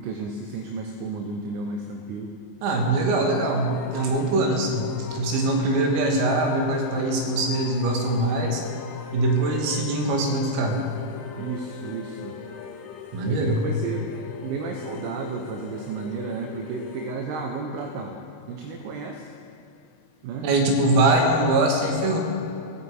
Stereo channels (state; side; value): late; left; 19 ms